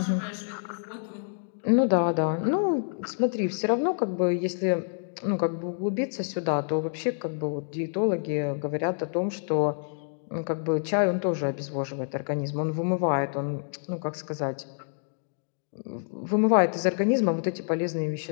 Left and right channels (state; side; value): silent; right; digital silence